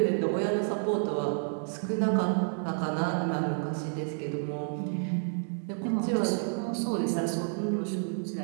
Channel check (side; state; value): left; silent; digital silence